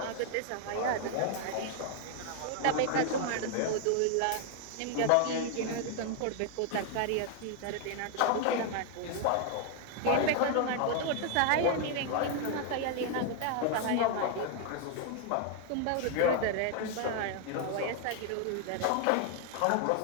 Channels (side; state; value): both; different; correlation 0.00